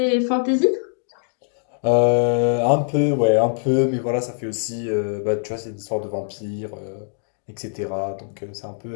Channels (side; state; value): right; silent; digital silence